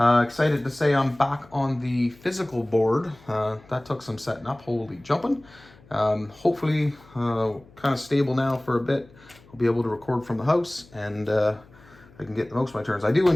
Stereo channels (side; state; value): left; noise; hum, 25 dB below the sound